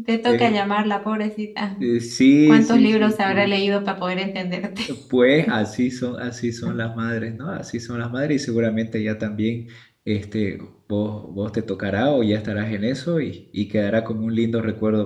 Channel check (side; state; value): both; identical; correlation 1.00